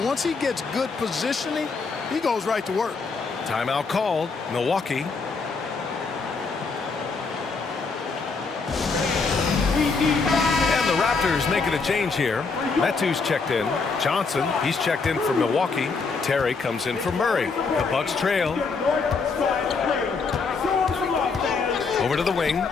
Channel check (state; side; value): quieter; right; 4.6 dB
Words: once he gets good positioning, he goes right to work. Timeout called, Milwaukee. And the Raptors making a change here. Metu's checked in. Johnson, he's checked in for Milwaukee. Terry comes in for Murray. The Bucks trail. Over to the wing.